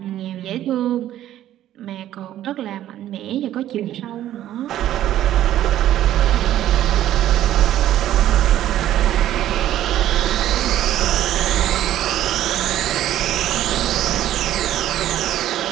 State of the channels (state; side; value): quieter; left; 12.5 dB